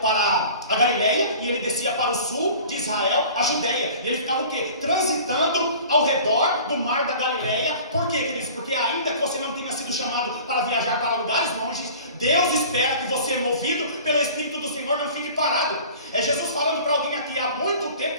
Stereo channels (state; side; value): inverted; both; correlation -0.43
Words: para a Galileia e ele descia para o sul de Israel, a Judéia. E ele ficava o quê? Transitando ao redor do mar da Galileia. Por quê, queridos? Porque ainda que você não tenha sido chamado para viajar para lugares longes, Deus espera que você, movido pelo Espírito do Senhor, não fique parado. É Jesus falando para alguém aqui: há muito